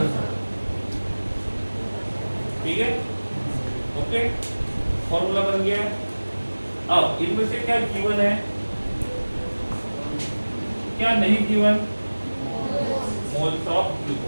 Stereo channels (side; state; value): both; inverted; correlation -1.00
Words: ठीक है, ओके, फॉर्मूला बन गया। अब इनमें से क्या गिवन है, क्या नहीं गिवन? Moles of